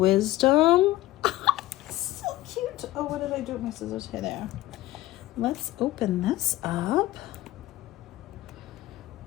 So cute. Oh, what did I do with my scissors? Here, there. Let's open this up.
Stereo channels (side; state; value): right; quieter; 16.5 dB